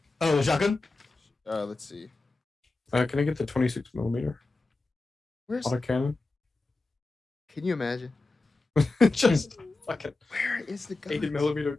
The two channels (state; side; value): quieter; right; 3.3 dB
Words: Oh, the shotgun. Let's see. Can I get the 26 millimeter Where's? autocannon? Can you imagine? Just fucking Where is the gun? 80 millimeter